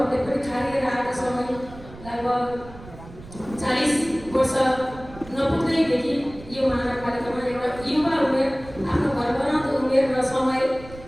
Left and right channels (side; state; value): right; noise; rumble, 17 dB below the sound